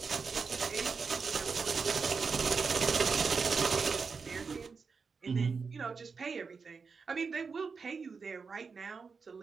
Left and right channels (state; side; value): quieter; left; 5.1 dB